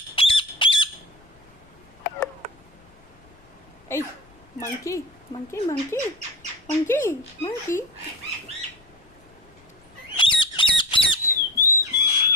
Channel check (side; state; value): left; noise; rumble, 28 dB below the sound